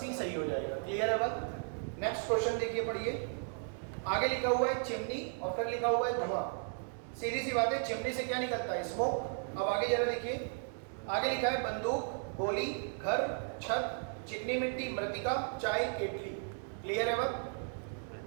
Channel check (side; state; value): left; silent; 54 dB below the other